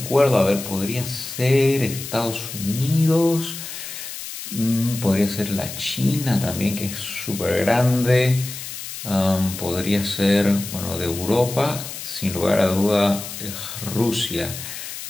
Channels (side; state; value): left; noise; hiss, 9 dB below the sound